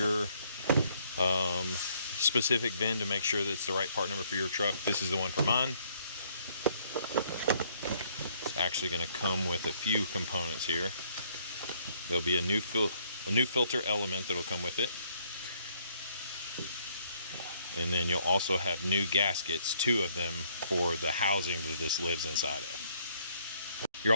specific VIN to make sure that it's the right part number for your truck. This is the one for mine. It's actually going to come with a few components here. There'll be a new filter element that'll come with it. And then you'll also have new gaskets, 2 of them, for the housing that this lives inside of. You're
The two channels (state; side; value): inverted; both; correlation -0.66